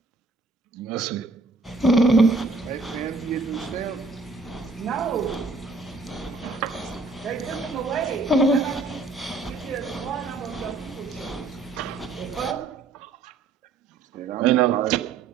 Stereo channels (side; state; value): left; quieter; 3.8 dB